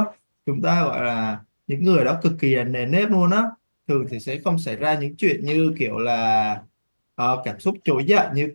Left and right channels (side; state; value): both; inverted; correlation -1.00